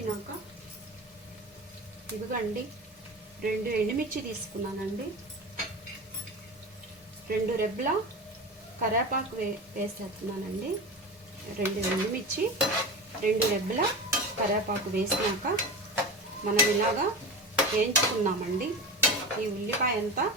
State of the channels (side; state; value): both; normal; correlation 0.27